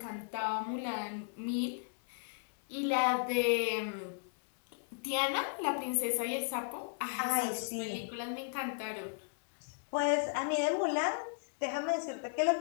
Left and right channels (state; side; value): silent; right; digital silence